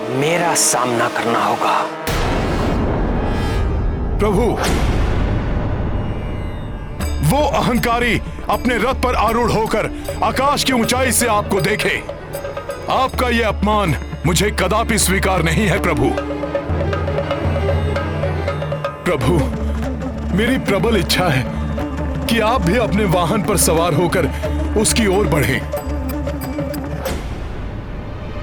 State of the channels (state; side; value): identical; both; correlation 1.00